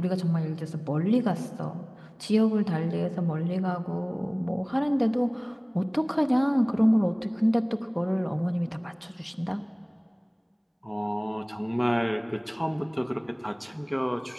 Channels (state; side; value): identical; both; correlation 1.00